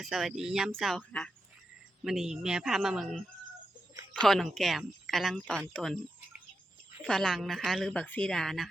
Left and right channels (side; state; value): both; normal; correlation 0.88